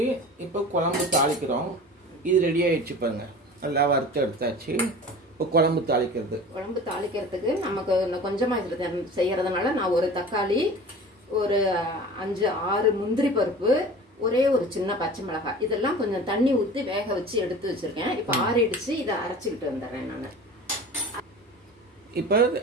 இப்போ குழம்பு தாளிக்கிறோம். இது ரெடி ஆயிடுச்சு பாருங்க. நல்லா வறுத்து எடுத்தாச்சு. இப்போ குழம்பு தாளிக்கிறதுக்கு நமக்கு கொஞ்சமாக இதில் செய்யறதுனால நான் ஒரு தக்காளி, ஒரு 5-6 முந்திரி பருப்பு, ஒரே ஒரு சின்ன பச்சை மிளகாய், இதெல்லாம் கொஞ்சம் தண்ணி ஊற்றி வேக வச்சு எடுத்து வச்சிருக்கேன். இப்போ ஆறிடுச்சு. இதை அரைச்சிக்கிட்டு வந்துடுறேன் நான். இப்போ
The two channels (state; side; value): normal; both; correlation 0.38